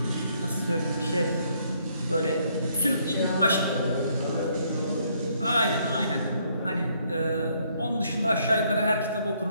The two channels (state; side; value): inverted; both; correlation -0.69